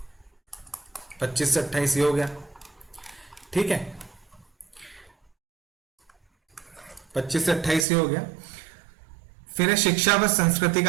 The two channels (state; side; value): drops out; left; at 7.9 s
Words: पच्चीस से 28 ये हो गया, ठीक है, 25 से 28 ये हो गया। फिर है शिक्षा व संस्कृति